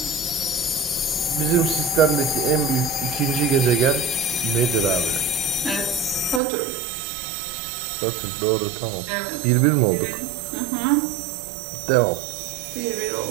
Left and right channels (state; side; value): drops out; left; at 6.4 s